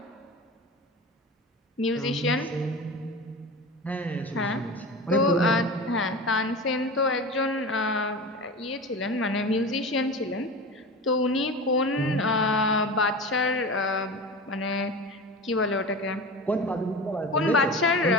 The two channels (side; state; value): both; normal; correlation 0.30